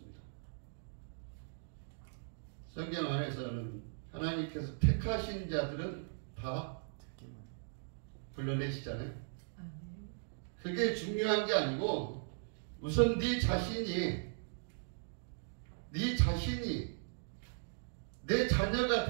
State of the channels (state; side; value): silent; left; digital silence